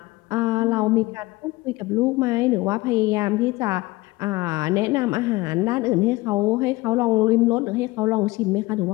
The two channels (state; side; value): quieter; right; 20.7 dB